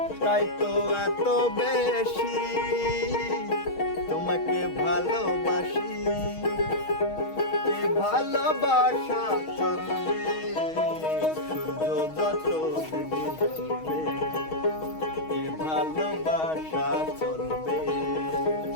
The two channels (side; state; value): right; late; 6.3 ms